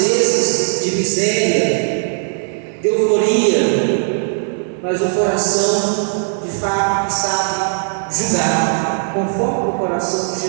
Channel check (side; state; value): left; silent; digital silence